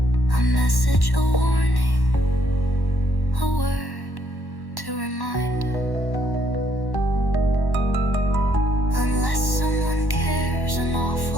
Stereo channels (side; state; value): right; late; 1.1 ms